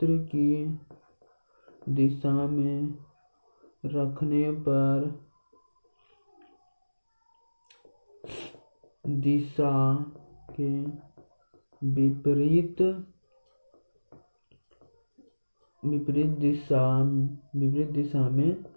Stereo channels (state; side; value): inverted; both; correlation -1.00